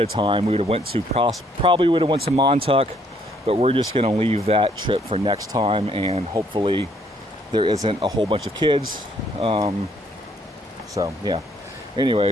time, we would have went to probably would have went to Montauk, but we're just going to leave that trip for next time, and hopefully there isn't a whole bunch of kids. So yeah,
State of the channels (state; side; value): normal; both; correlation 0.67